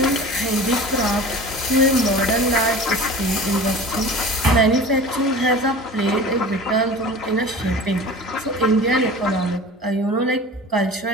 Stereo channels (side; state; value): both; normal; correlation 0.38